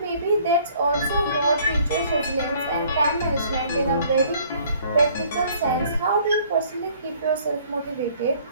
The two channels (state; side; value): inverted; both; correlation -0.57